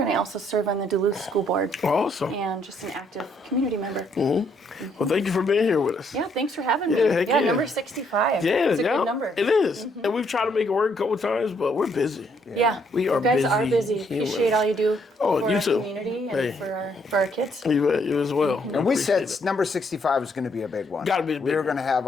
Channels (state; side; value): normal; both; correlation 0.70